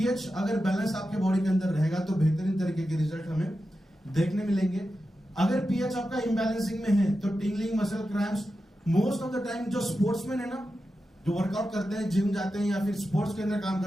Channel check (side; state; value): both; normal; correlation 0.91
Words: अगर बैलेंस आपके बॉडी के अंदर रहेगा तो बेहतरीन तरीके के रिजल्ट हमें देखने मिलेंगे। अगर पीएच आपका इम्बैलेंसिंग में है तो tingling, muscle cramps, most of the time जो स्पोर्ट्समैन है ना, जो वर्कआउट करते हैं, जिम जाते हैं या फिर स्पोर्ट्स के अंदर काम